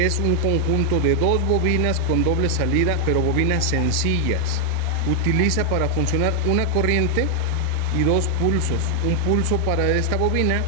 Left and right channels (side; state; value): both; different; correlation 0.00